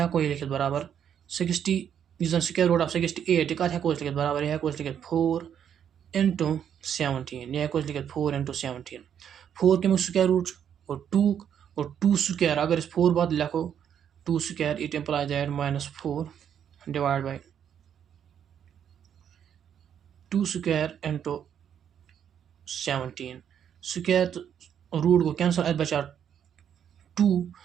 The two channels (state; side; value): quieter; left; 8.8 dB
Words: हेको लिखित बराबर 60 स्क्वायर रूट ऑफ 68 यह कत हेको लिखित बराबर यह हेको लिखित 4 into 17 यह हेको लिखित 4 into 17 4 कमिक स्क्वायर रूट और 2 स्क्वायर अगर 4 बाद लिखो 2 square it implies that -4 divide by 2 square into 17 square root गो कैंसल अत बचा 2